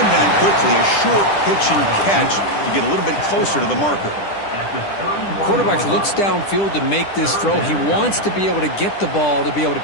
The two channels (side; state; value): right; late; 10 ms